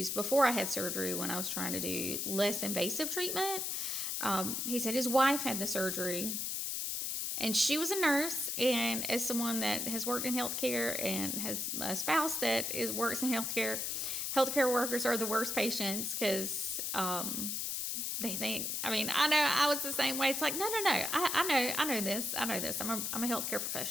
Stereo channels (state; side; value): noise; left; hiss, 1 dB below the sound